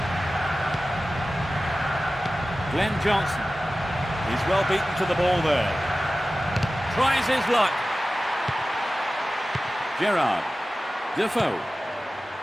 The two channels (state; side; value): normal; both; correlation 0.96